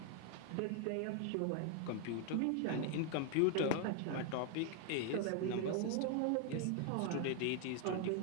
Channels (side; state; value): both; different; correlation 0.00